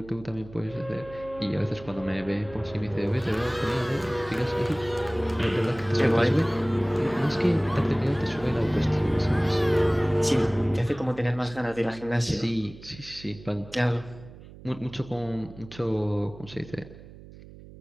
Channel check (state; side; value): noise; right; hum, 18 dB below the sound